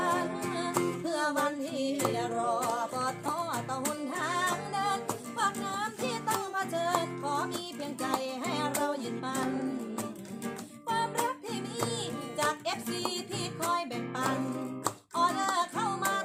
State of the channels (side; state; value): both; identical; correlation 1.00